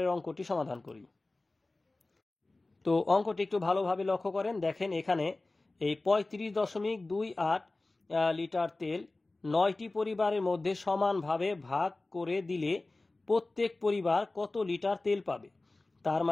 অঙ্কটি সমাধান করি। তো অঙ্কটি একটু ভালোভাবে লক্ষ্য করেন। দেখেন, এখানে এই 35.28 লিটার তেল 9টি পরিবারের মধ্যে সমানভাবে ভাগ করে দিলে প্রত্যেক পরিবার কত লিটার তেল পাবে? তার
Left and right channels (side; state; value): right; quieter; 3.1 dB